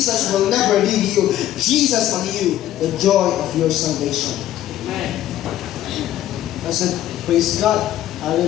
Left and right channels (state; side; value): quieter; right; 12.8 dB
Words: will never leave you. Jesus on you, the joy of your salvation. Amen. I said, praise God.